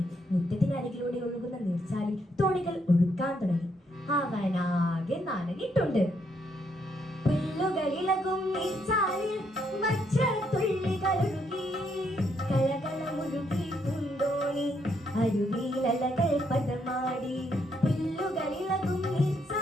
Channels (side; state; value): both; normal; correlation 0.74